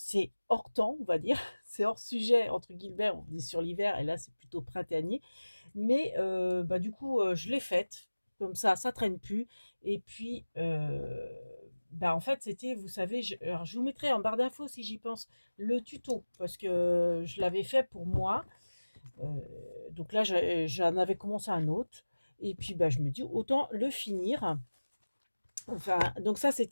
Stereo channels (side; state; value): both; inverted; correlation -1.00